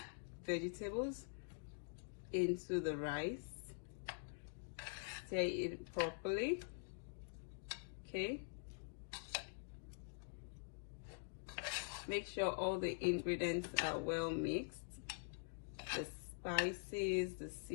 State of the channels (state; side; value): silent; right; digital silence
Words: vegetables into the rice. Stir it properly. Okay, make sure all the ingredients are well mixed. The spices, the